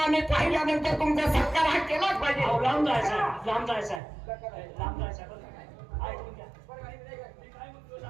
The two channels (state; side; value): drops out; left; at 4.0 s